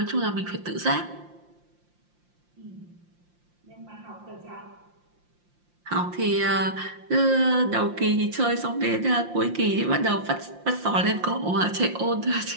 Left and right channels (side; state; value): left; late; 5.7 ms